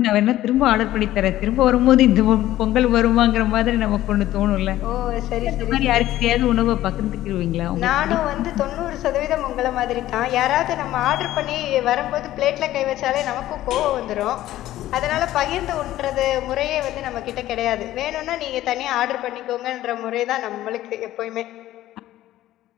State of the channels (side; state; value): right; quieter; 14.4 dB